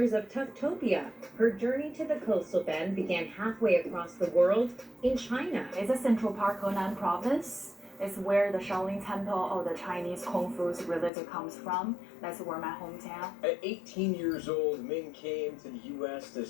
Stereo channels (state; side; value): drops out; right; at 11.1 s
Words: of Tuftopia. Her journey to the coastal bend began halfway across the world in China. It's a Central Park, Henan province. It's where the Shaolin Temple of the Chinese Kung Fu religion comes from. That's where my hometown. At 18 years old, Ming came to the U.S. to